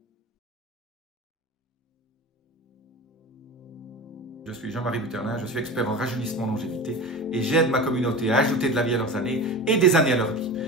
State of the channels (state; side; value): normal; both; correlation 0.30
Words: Je suis Jean-Marie Buterlin, je suis expert en rajeunissement longévité et j'aide ma communauté à ajouter de la vie à leurs années et des années à leur vie.